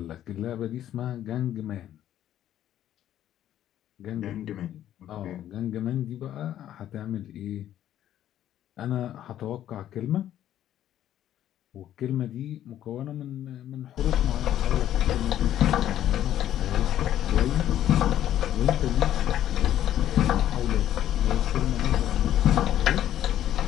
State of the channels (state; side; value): quieter; right; 11.7 dB